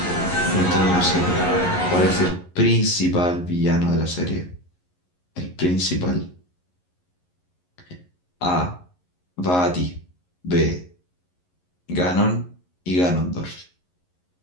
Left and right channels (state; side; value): late; right; 11 ms